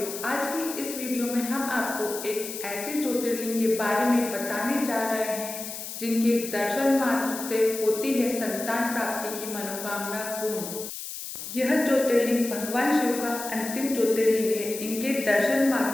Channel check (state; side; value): noise; left; hiss, 8 dB below the sound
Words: आज की इस वीडियो में हम आपको एक ऐसे ज्योतिर्लिंग के बारे में बताने जा रहे हैं जिनके दर्शन मात्र से होती है संतान प्राप्ति की मनोकामना पूर्ण। यह ज्योतिर्लिंग भगवान शिव का अंतिम ज्योतिर्लिंग है। इनके दर्शन